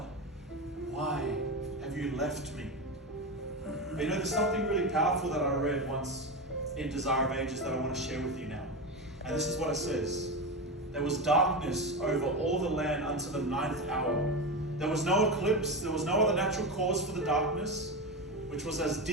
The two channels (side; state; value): both; normal; correlation 0.19